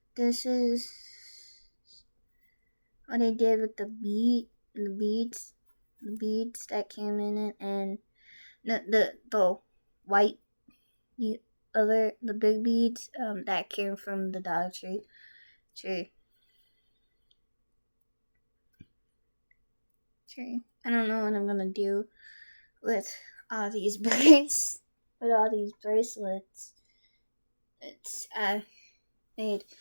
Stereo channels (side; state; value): both; inverted; correlation -1.00